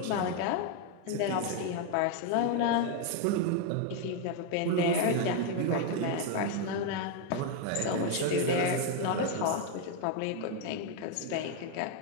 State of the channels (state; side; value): different; both; correlation 0.01